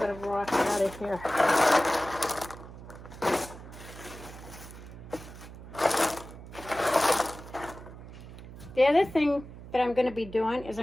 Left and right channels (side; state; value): right; noise; hum, 15 dB below the sound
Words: of rock out of here. The other thing that I'm going to be doing is